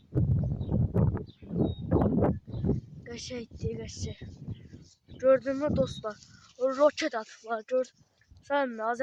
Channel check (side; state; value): both; identical; correlation 1.00